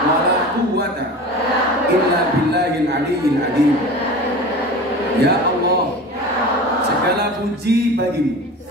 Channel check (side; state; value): both; normal; correlation 0.34